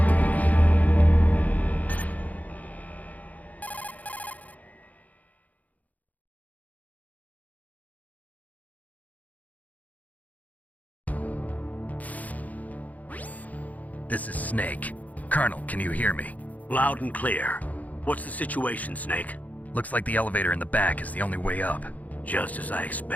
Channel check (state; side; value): late; right; 0.076 ms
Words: This is Snake. Colonel, can you hear me? Loud and clear. What's the situation, Snake? Looks like the elevator in the back is the only way up. Just as I